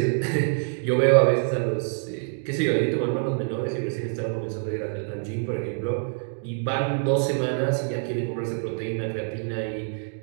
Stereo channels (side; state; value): left; silent; 61 dB below the other